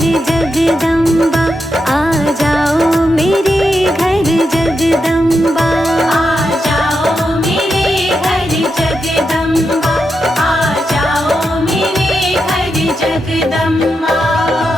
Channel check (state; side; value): normal; both; correlation 0.86